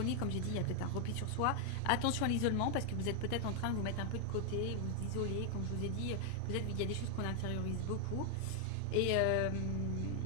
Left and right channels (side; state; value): both; different; correlation 0.00